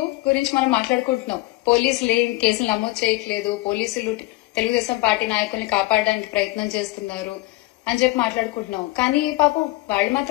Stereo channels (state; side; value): quieter; right; 20.6 dB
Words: గురించి మనం మాట్లాడుకుంటున్నాం. పోలీసులు ఏం కేసులు నమోదు చేయట్లేదు, పోలీసులు తెలుగుదేశం పార్టీ నాయకుల్ని కాపాడడానికి ప్రయత్నం చేస్తున్నారు అని చెప్పి మాట్లాడుకుంటున్నాం. కానీ పాపం వాళ్ళు